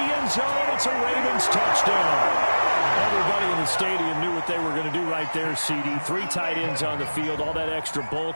end zone. It's a Ravens touchdown. Everybody in the stadium knew what they were going to do right there, CD. 3 tight ends on the field, all that extra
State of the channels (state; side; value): inverted; both; correlation -1.00